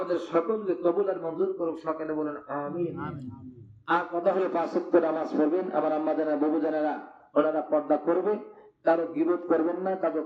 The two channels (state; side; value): identical; both; correlation 1.00